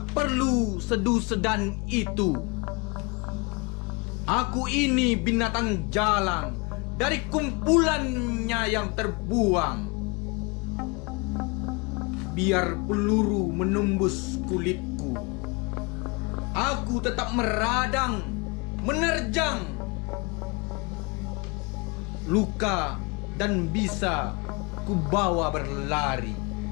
perlu sedu-sedan itu. Aku ini binatang jalang dari kumpulannya yang terbuang. Biar peluru menembus kulitku, aku tetap meradang, menerjang luka dan bisa kubawa berlari.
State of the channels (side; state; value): right; quieter; 28.9 dB